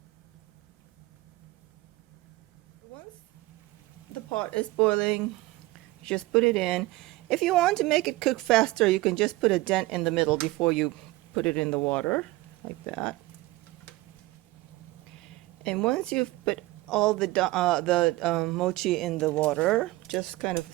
Once the pot is boiling, just put it in. If you want to make it cook faster, you can just put a dent in the middle before you put it in the water, like that. And once you've put all the mochi in the water, just kind of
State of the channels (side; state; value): left; quieter; 19.3 dB